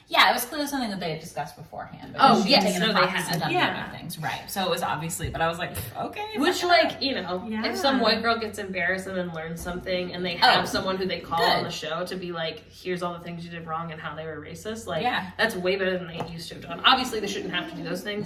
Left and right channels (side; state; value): both; identical; correlation 1.00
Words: Yeah, it was clearly something that they had discussed beforehand. Oh, yes. Taken No, they had. done other things. Right. So it was obviously, but I was like, okay. Which, like, you know, if some white girl gets embarrassed and then learns something and they have someone who they call on the show to be like, here's all the things you did wrong and how they were racist, like, that's way better than they used to have done. Obviously, they shouldn't have to do those